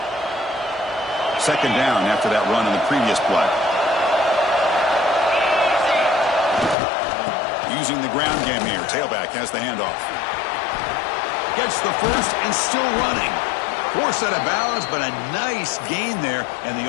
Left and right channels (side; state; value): right; drops out; at 6.8 s